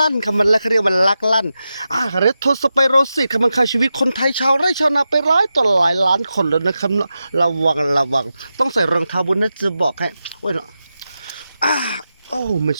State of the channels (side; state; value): both; inverted; correlation -0.90